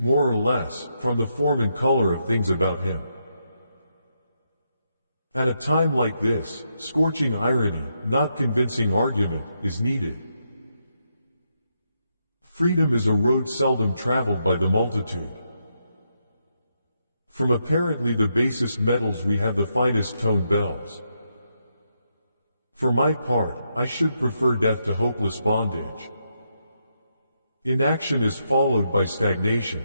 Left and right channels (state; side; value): inverted; both; correlation -0.81